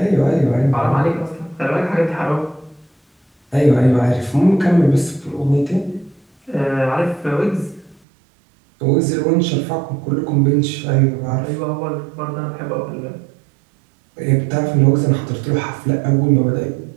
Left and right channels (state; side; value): drops out; left; at 8.0 s